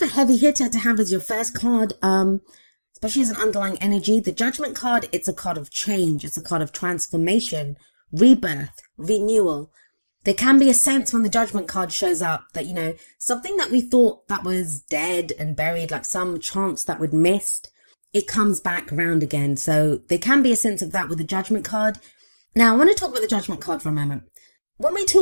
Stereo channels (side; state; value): both; inverted; correlation -1.00